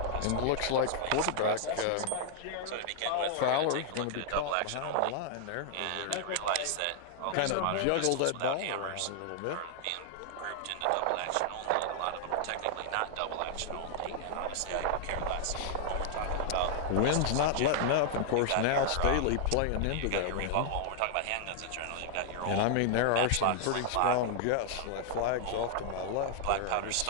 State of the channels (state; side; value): different; both; correlation -0.01